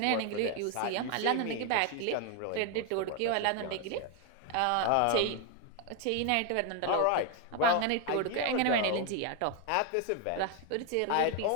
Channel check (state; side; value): different; both; correlation 0.01